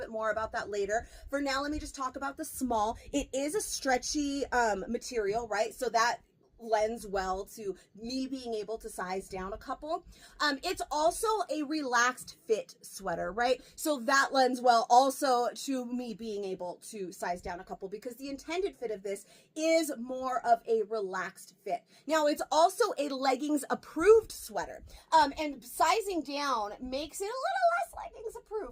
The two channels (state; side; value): identical; both; correlation 1.00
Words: more about that later. For now, let me just talk about the small. It is a stretchy material, right? So that lends well to me being able to size down a couple. It's also a relaxed fit sweater, right? So that lends well also to me being able to size down a couple, because the intended fit of this is more of a relaxed fit. Now, it's also a leggings approved sweater. And sizing down makes it a little less leggings